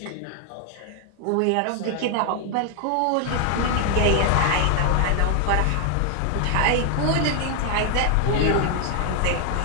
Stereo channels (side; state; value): both; different; correlation 0.00